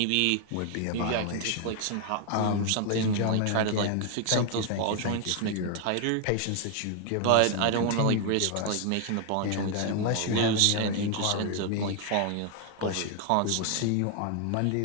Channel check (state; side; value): different; both; correlation 0.00